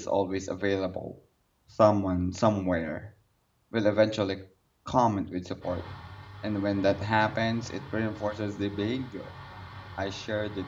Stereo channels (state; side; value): identical; both; correlation 1.00